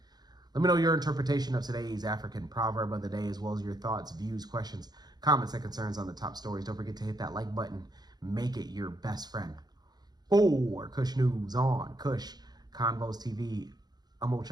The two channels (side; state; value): left; late; 0.20 ms